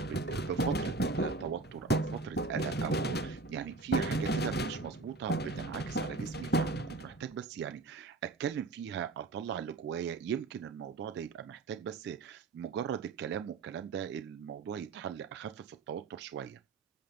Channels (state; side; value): quieter; left; 3.8 dB